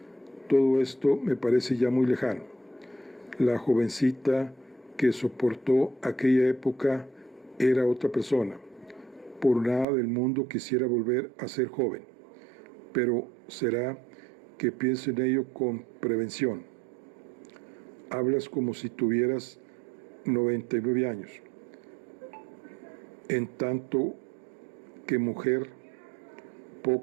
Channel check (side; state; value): left; drops out; at 9.9 s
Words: todo esto me parece ya muy lejano. La jovencita que soportó aquella época era otra persona. Por nada del mundo quisiera volver a ser joven, pero será que pienso en ello con prevención. Hablas como si tuvieras 99 años. En tanto que mujer,